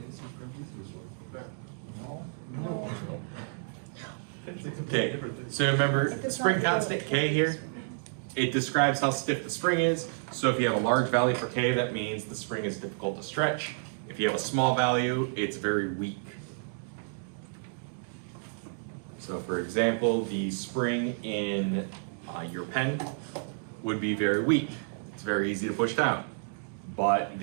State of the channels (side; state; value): left; silent; digital silence